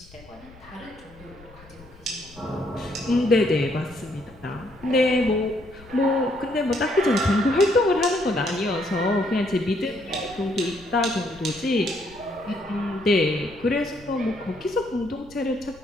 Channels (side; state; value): left; noise; rumble, 23 dB below the sound